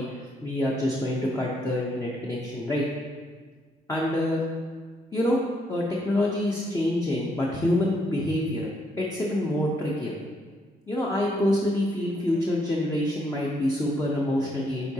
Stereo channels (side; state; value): both; normal; correlation 0.74